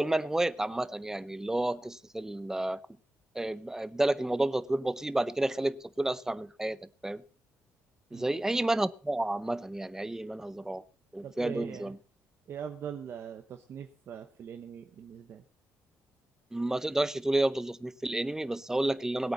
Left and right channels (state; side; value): normal; both; correlation 0.97